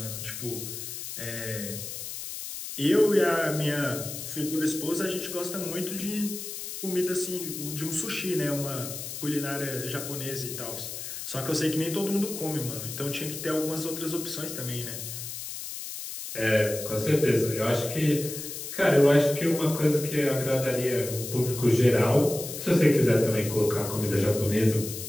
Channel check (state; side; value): noise; left; hiss, 8 dB below the sound